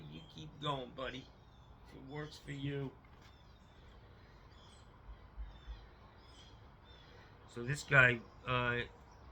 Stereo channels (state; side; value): identical; both; correlation 1.00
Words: you keep going, buddy. If it works for you. So this guy,